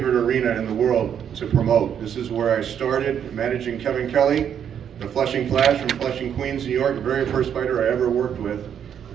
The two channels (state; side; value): quieter; left; 8.7 dB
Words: arena in the world to promote. This is where I started managing Kevin Kelly, the Flushing Flash from Flushing, Queens, New York, the very first fighter I ever worked with.